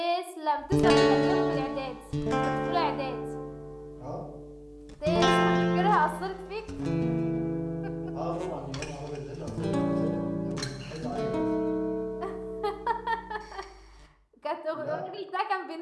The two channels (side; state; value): both; identical; correlation 1.00